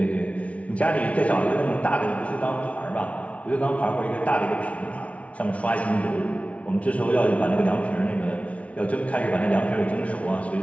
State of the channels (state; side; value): late; right; 0.065 ms